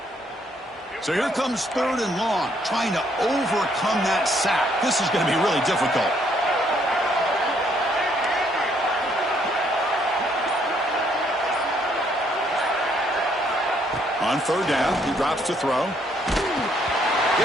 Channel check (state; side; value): normal; both; correlation 0.69